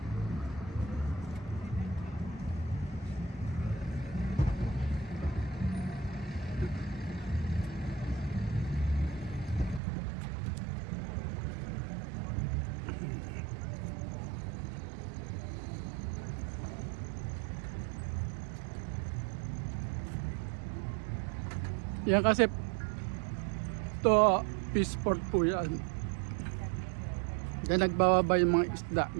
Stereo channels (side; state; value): left; drops out; at 9.8 s